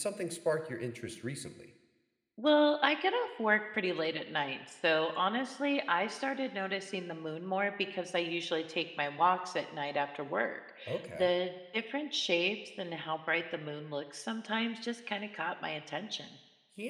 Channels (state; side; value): identical; both; correlation 1.00